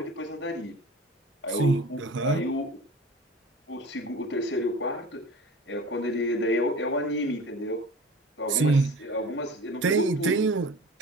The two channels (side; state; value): both; normal; correlation 0.39